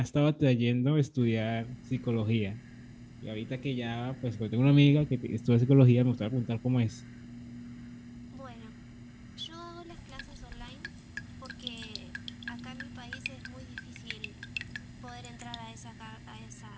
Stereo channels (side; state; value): both; identical; correlation 1.00